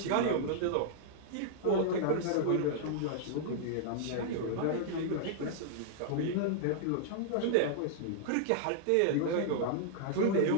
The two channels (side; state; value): both; different; correlation -0.01